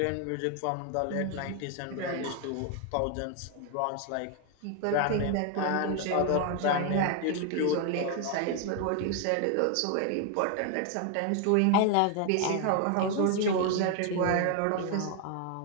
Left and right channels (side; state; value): both; different; correlation 0.01